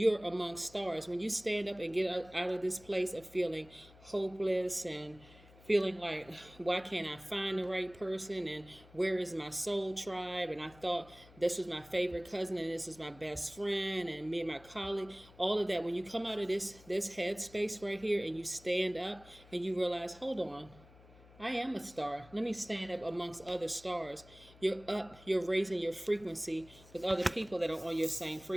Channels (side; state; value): left; noise; hum, 23 dB below the sound